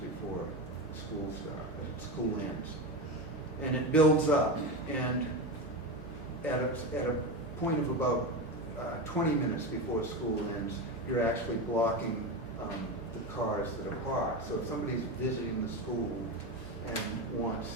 school ends. And it builds up, and at a point of about 20 minutes before school ends, you're actually blocking the cars that are parked. So if somebody's visiting the school and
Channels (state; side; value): normal; both; correlation 0.19